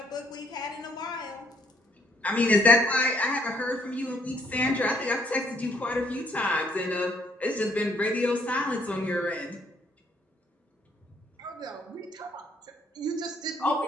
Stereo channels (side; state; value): both; normal; correlation 0.67